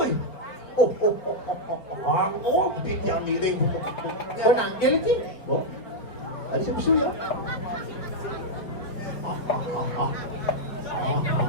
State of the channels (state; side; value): late; right; 4.8 ms